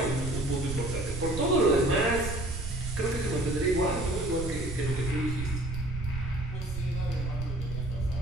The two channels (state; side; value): noise; right; rumble, 5 dB below the sound